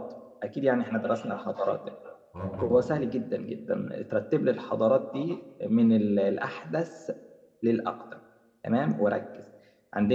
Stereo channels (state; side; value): identical; both; correlation 1.00